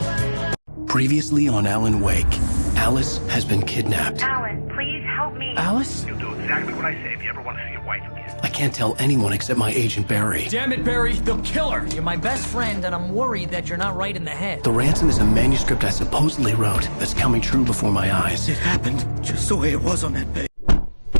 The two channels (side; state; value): both; inverted; correlation -1.00